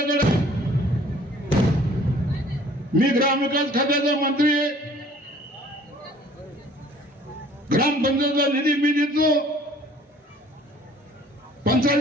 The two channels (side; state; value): both; normal; correlation 0.54